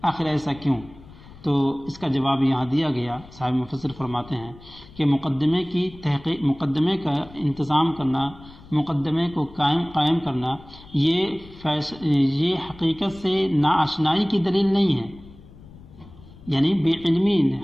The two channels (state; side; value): noise; left; rumble, 20 dB below the sound